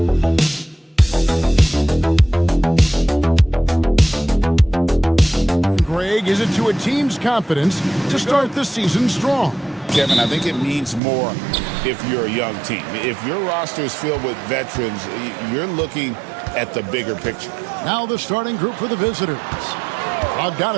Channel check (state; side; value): drops out; left; at 11.0 s